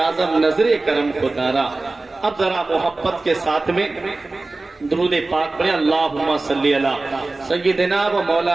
نظر کرم خدارا۔ اب ذرا محبت کے ساتھ میں درود پاک پڑھیں، اللہم صلی علی سیدنا و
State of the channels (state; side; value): quieter; left; 3.3 dB